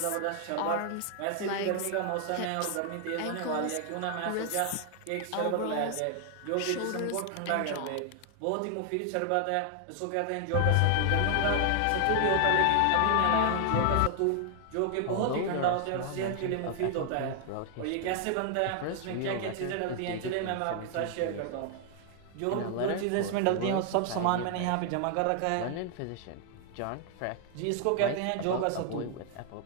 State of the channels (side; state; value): both; different; correlation 0.00